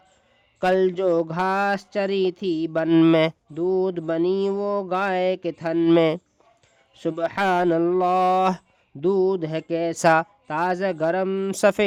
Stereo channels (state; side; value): identical; both; correlation 1.00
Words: کل جو گھاس چری تھی بن میں، دودھ بنی وہ گائے کے تھن میں۔ سبحان اللہ، دودھ ہے کیسا تازہ گرم،